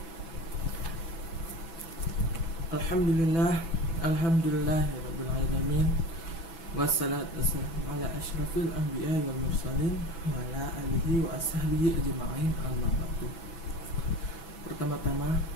Alhamdulillah, alhamdulillahirabbil alamin. Wassalatu wassalamu ala asyrafil anbiya'i wal mursalin wa ala alihi wa ashabihi ajma'in, amma ba'du. Pertama-tama,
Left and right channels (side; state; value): right; late; 6.1 ms